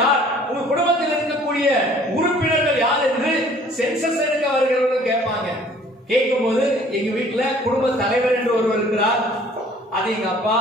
யார், உங்க குடும்பத்தில் இருக்கக்கூடிய உறுப்பினர்கள் யார் என்று சென்சஸ் எடுக்க வருகிறவர்கள் கேட்பாங்க. கேட்கும் போது எங்க வீட்டுல குடும்ப தலைவர் என்று ஒருவர் இருக்கிறார், அது எங்க அப்பா,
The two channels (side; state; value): both; normal; correlation 0.54